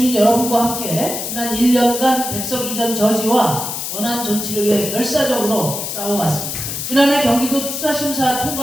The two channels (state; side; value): noise; left; hiss, 5 dB below the sound